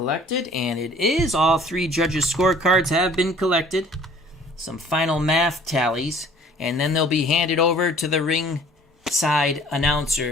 and it is. All 3 judges' scorecards have been collected. Some final math tallies, and then they'll be handed over to the ringside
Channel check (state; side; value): normal; both; correlation 0.53